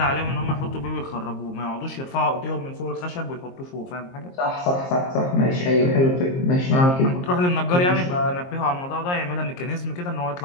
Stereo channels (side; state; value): right; late; 22 ms